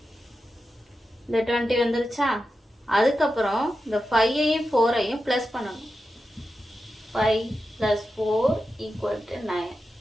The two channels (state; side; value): normal; both; correlation 0.90